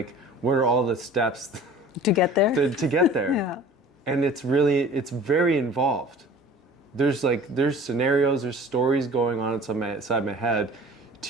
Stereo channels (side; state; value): both; normal; correlation 0.44